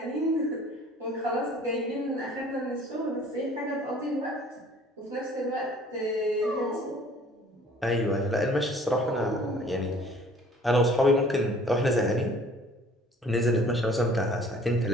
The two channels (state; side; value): normal; both; correlation 0.53